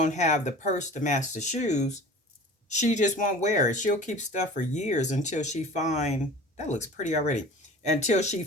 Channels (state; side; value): normal; both; correlation 0.41